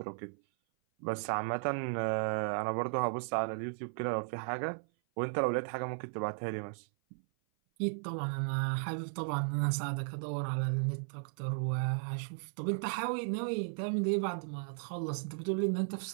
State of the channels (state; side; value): silent; left; 54 dB below the other